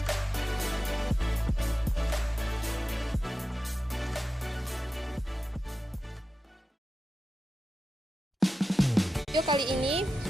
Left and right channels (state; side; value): normal; both; correlation 0.93